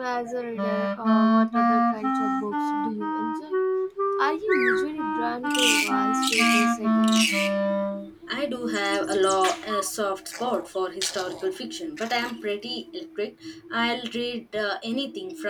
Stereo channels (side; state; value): both; identical; correlation 1.00